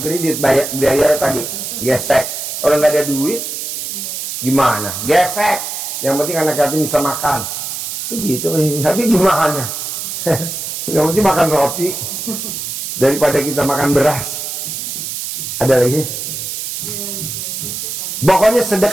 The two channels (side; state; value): right; noise; hiss, 5 dB below the sound